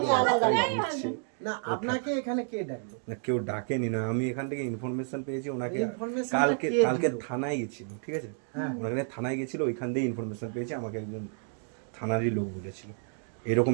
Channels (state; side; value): silent; left; 58 dB below the other